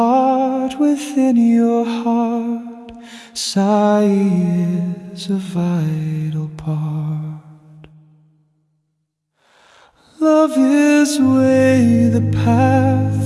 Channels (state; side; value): identical; both; correlation 1.00